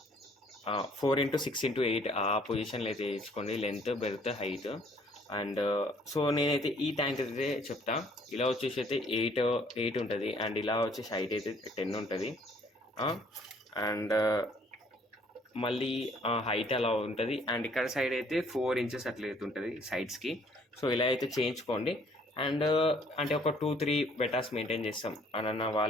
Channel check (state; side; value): normal; both; correlation 0.61